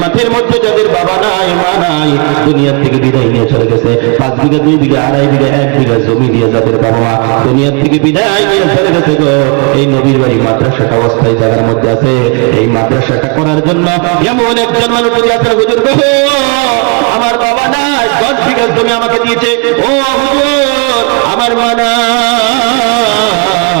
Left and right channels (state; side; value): quieter; left; 34.0 dB